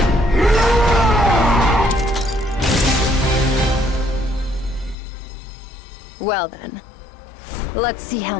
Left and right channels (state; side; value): drops out; right; at 5.0 s